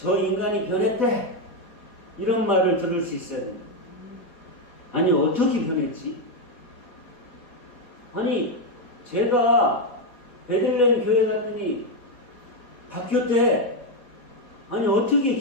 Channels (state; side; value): late; right; 4.5 ms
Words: 인간이 변했대. 이런 말을 들을 수 있어요. 아니 어떻게 변했지? 아니 제가 베들레헴 교회 갔더니 바뀌었대. 아니 어떻게